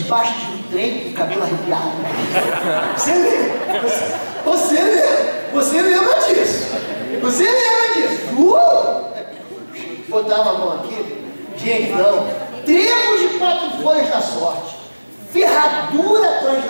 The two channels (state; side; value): inverted; both; correlation -1.00